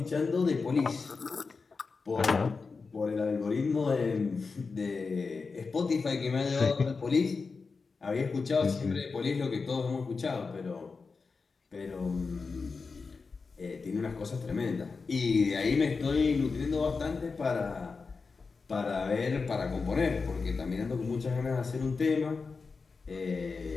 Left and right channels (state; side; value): quieter; right; 4.6 dB